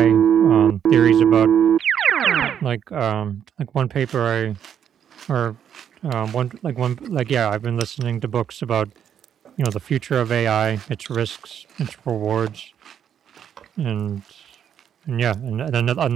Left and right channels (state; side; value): quieter; left; 8.9 dB